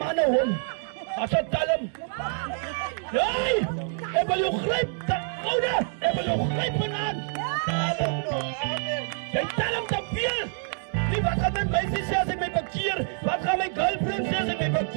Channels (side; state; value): left; silent; 60 dB below the other